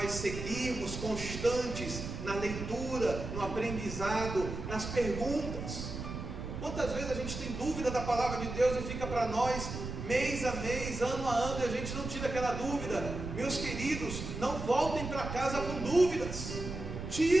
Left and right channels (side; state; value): right; noise; rumble, 7 dB below the sound